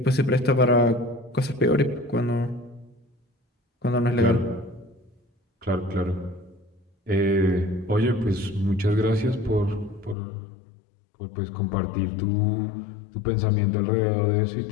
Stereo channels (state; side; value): drops out; right; at 10.2 s